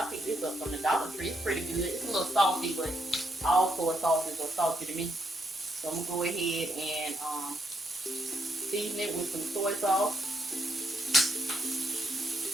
picked this up from the Dollar Tree. It's pretty good. It's a little salty, but all soy sauces are salty to me. So I'm going to go ahead and season it with some soy sauce.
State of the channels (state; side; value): normal; both; correlation 0.78